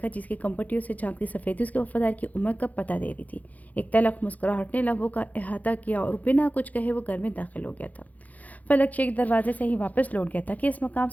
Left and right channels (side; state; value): right; late; 0.077 ms